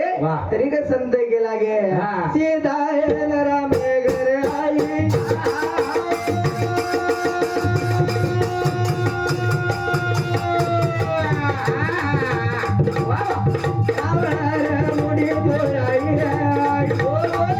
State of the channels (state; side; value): identical; both; correlation 1.00